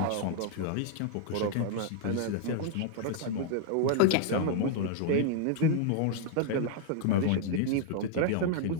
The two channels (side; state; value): both; different; correlation 0.00